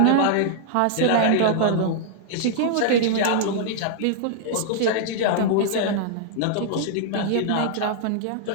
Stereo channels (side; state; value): both; different; correlation -0.01